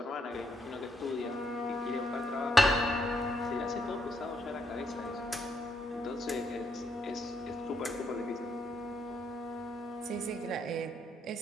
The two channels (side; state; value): both; normal; correlation 0.76